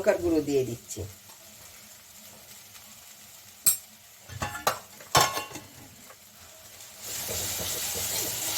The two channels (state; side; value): identical; both; correlation 1.00